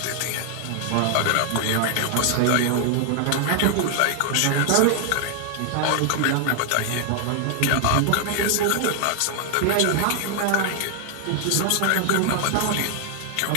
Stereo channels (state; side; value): different; both; correlation 0.00